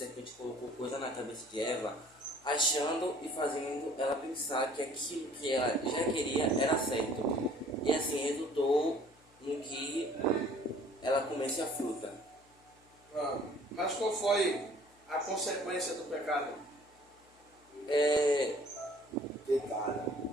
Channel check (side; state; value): left; noise; hum, 30 dB below the sound